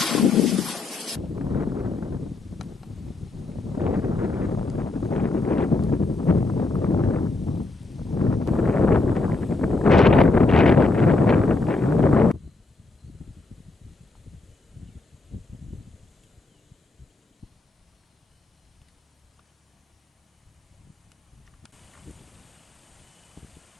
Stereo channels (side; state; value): right; quieter; 3.3 dB